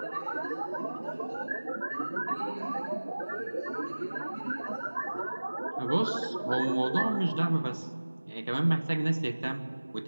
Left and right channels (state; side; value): inverted; both; correlation -1.00